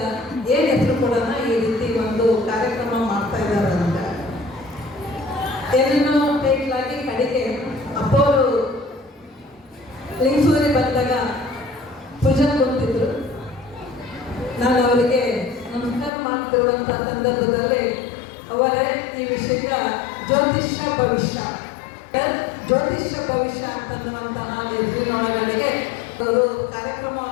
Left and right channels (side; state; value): right; drops out; at 16.1 s